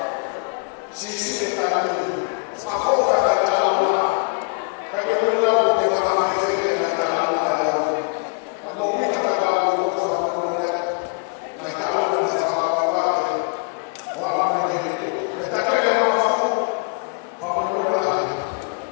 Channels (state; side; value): quieter; right; 39.7 dB